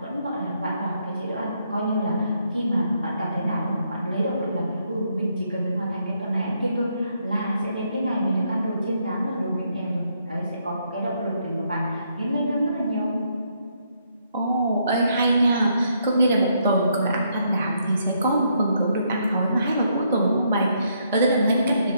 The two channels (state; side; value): inverted; both; correlation -0.74